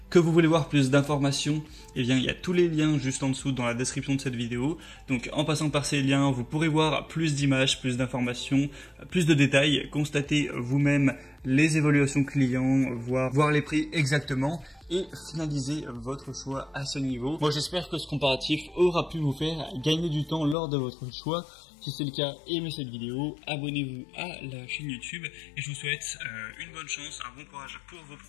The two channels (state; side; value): drops out; right; at 20.6 s